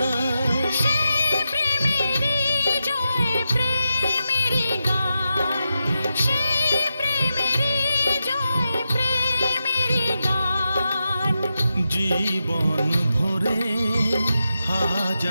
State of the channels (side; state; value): both; inverted; correlation -0.88